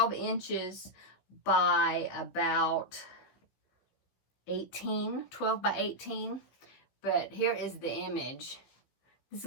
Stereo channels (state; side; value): late; right; 16 ms